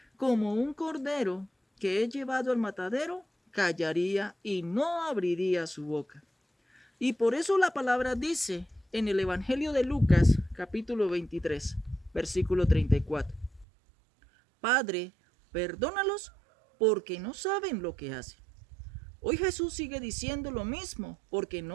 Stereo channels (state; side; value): drops out; left; at 13.7 s